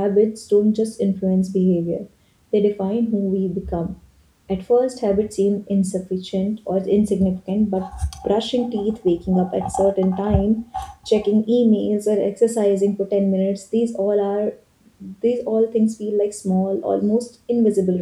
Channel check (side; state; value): both; identical; correlation 1.00